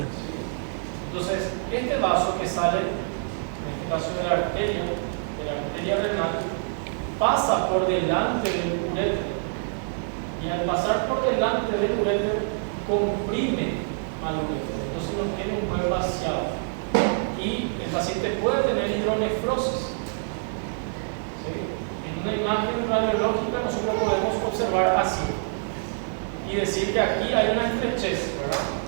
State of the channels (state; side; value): silent; left; digital silence